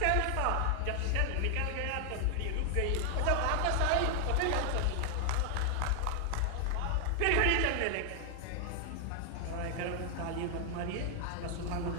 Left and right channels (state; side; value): different; both; correlation 0.00